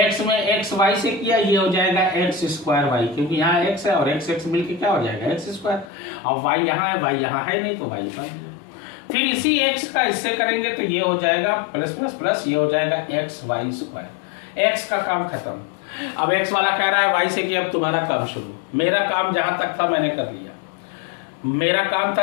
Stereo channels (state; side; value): drops out; right; at 5.9 s